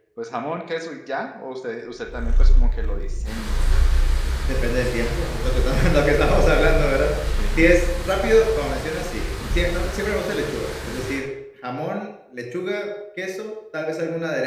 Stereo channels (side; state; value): both; identical; correlation 1.00